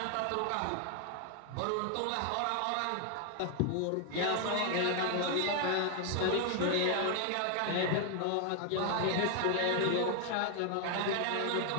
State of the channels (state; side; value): different; both; correlation 0.00